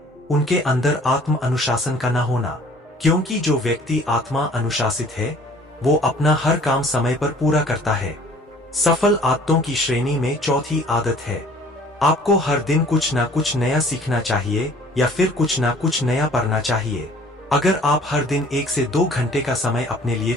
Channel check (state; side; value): normal; both; correlation 0.52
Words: उनके अंदर आत्म अनुशासन का ना होना। क्योंकि जो व्यक्ति आत्मा अनुशासित है वो अपना हर काम समय पर पूरा करता है। सफल आदतों की श्रेणी में चौथी आदत है, आपको हर दिन कुछ ना कुछ नया सीखना चाहिए या फिर कुछ ना कुछ नया पढ़ना चाहिए। अगर आप हर दिन 1 से 2 घंटे का समय अपने लिए